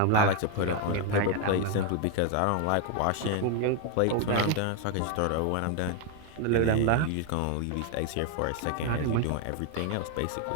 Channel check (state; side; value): different; both; correlation 0.01